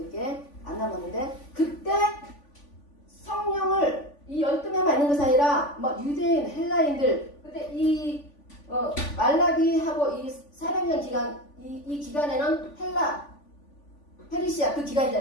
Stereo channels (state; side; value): late; right; 3.5 ms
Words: 안 남았는데 그때 성령을 이 12명만 있는 것이 아니라 뭐 유대인, 헬라인들 그때 이 말라기하고 이 400년 기간 이 기간에는 페르시아 그